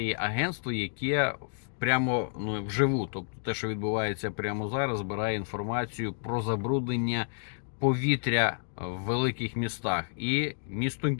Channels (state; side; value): silent; right; digital silence